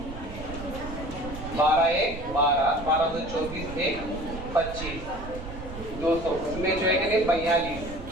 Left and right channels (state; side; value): noise; right; rumble, 11 dB below the sound